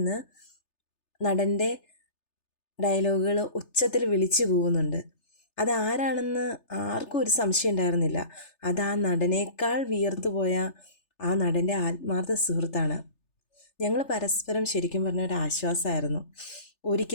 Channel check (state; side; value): late; right; 3.3 ms